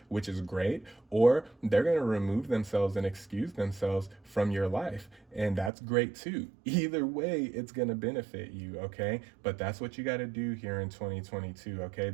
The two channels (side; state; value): left; drops out; at 5.7 s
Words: which is great, or they're going to remove themselves and excuse themselves from your life. And that's great too. Either way, it's going to benefit you, okay? But that's what you got to do here in 2022, okay?